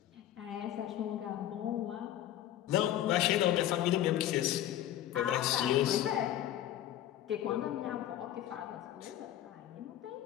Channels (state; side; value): quieter; right; 12.3 dB